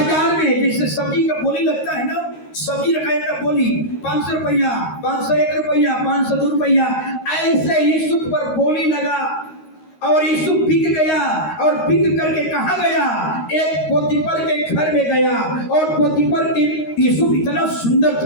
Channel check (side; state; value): right; late; 13 ms